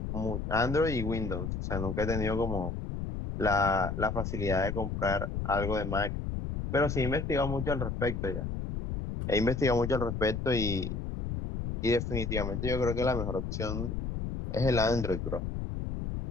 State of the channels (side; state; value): left; noise; rumble, 3 dB below the sound